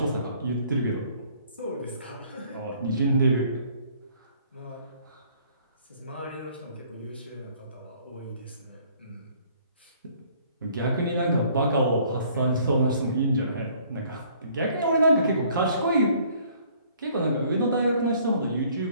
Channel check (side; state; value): both; inverted; correlation -0.59